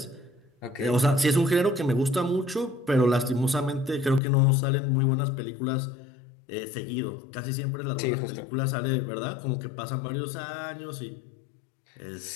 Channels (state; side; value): drops out; right; at 4.2 s